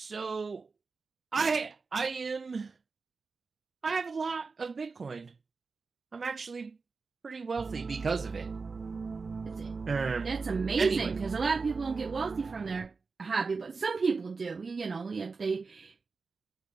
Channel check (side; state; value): left; quieter; 4.5 dB